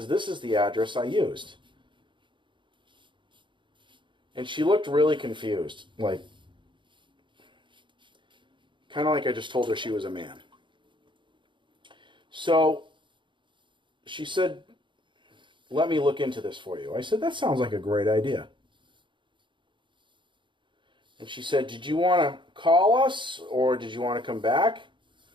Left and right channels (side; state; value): left; late; 0.23 ms